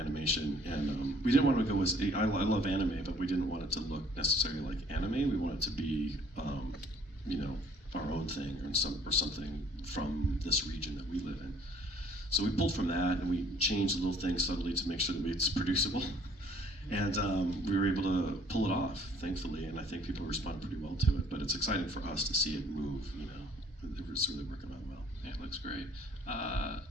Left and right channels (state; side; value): normal; both; correlation 0.58